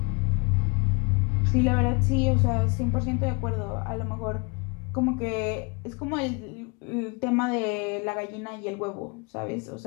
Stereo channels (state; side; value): quieter; right; 30.6 dB